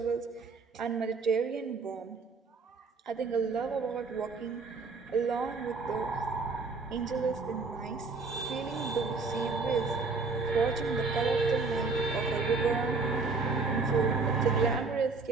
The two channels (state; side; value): quieter; left; 4.1 dB